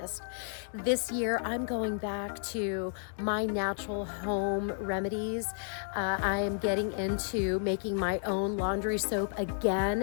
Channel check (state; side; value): silent; right; 56 dB below the other